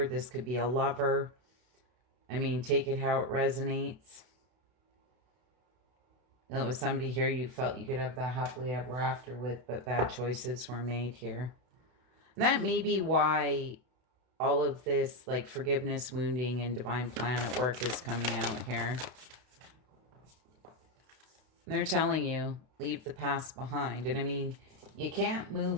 This could be a lover. I mean, take it how it resonates. It was somebody here you felt you could have that happily ever after with, but bad choices were made here. And that may be why all of this, like forgiveness, wounding, and divine plan at work is coming out here. And they're telling you, leave the past behind. And I mean, you can't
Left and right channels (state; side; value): late; left; 32 ms